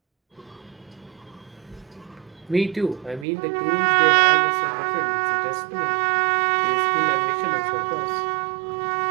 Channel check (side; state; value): left; drops out; at 3.2 s